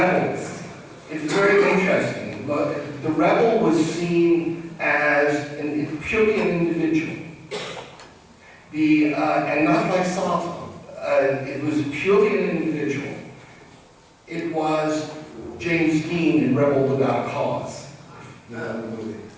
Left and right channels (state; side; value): identical; both; correlation 1.00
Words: it's very interesting, but the rebel was seen as purely an individual. And not like Safa, it was purely an individual. It was James Dean in Rebel Without a Cause.